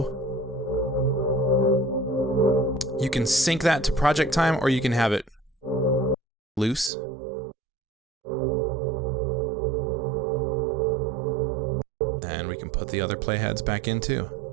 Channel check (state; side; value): drops out; left; at 6.9 s